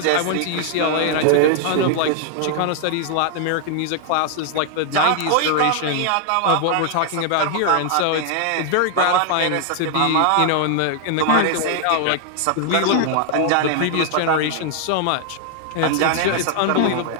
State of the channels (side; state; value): both; different; correlation 0.00